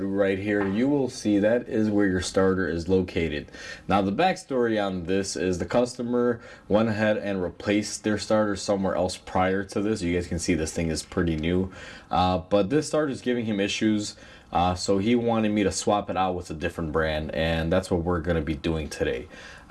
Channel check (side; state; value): both; identical; correlation 1.00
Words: right here, you will see that is where your starter is located. Now the backstory on this is the customer went ahead and replaced their starter somewhere else prior to this. You guys can see this thing is pretty new, but this starter is giving him issues. So he wanted me to swap it out with a different brand, and that's what we're going to be doing today.